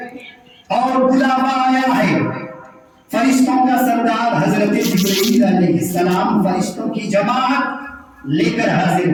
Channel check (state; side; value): identical; both; correlation 1.00